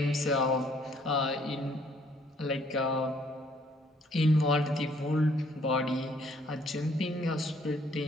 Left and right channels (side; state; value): both; normal; correlation 0.64